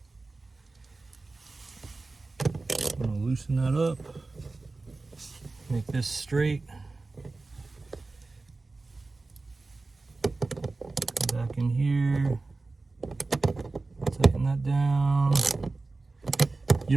I'm going to loosen that up. Make this straight. Back in here. Tighten that down. You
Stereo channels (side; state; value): left; quieter; 3.5 dB